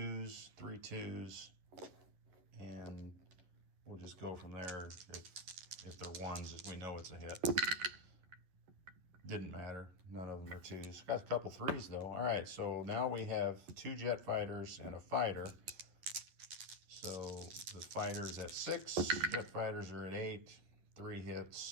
3 2s, and we'll just go from there. If they're ones, we know it's a hit. Didn't matter. None of them are twos. Got a couple threes though. All right, so now we have 2 jet fighters and a fighter. So the fighter's at 6, jet fighters are at 8, 3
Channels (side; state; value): left; late; 11 ms